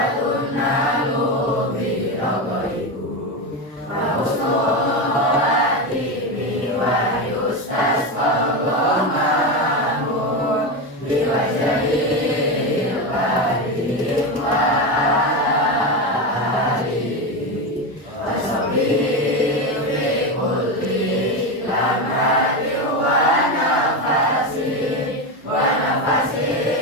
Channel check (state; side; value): normal; both; correlation 0.15